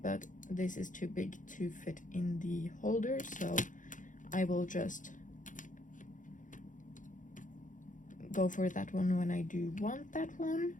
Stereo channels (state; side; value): late; right; 0.37 ms